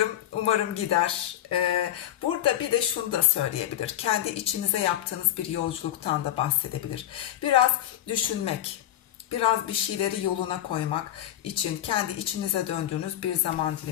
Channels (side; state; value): right; quieter; 12.3 dB